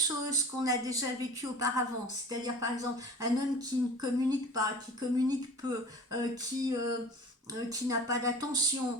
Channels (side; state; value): both; normal; correlation 0.40